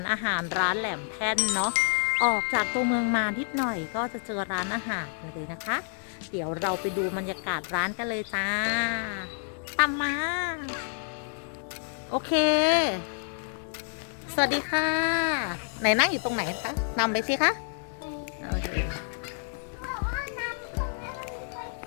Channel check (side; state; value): right; silent; 59 dB below the other